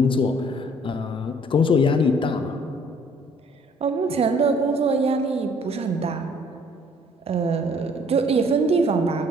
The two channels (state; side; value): normal; both; correlation 0.59